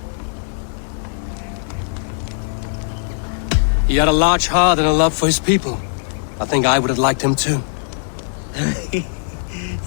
He had a large heart and a love for his people. I think I would have liked him too.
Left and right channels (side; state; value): right; silent; digital silence